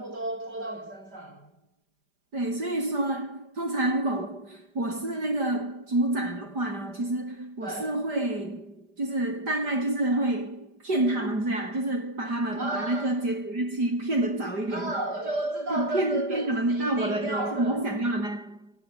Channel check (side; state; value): left; late; 5.0 ms